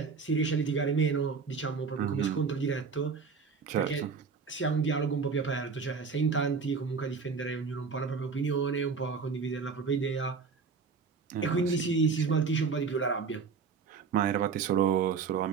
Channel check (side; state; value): left; quieter; 5.4 dB